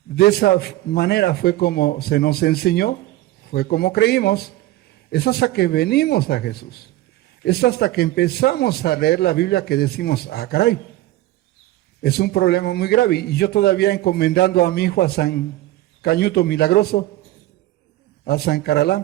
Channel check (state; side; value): quieter; left; 16.2 dB